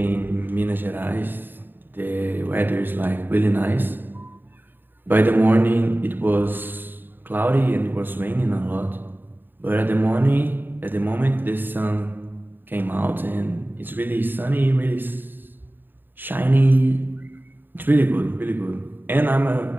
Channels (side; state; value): left; late; 0.093 ms